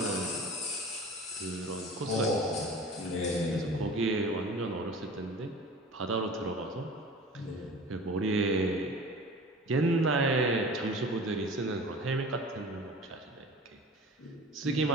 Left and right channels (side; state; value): both; normal; correlation 0.40